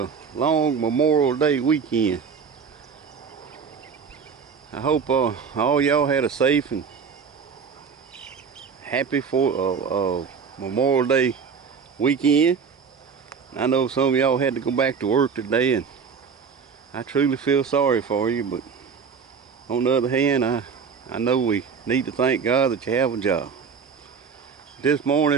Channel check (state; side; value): quieter; left; 6.1 dB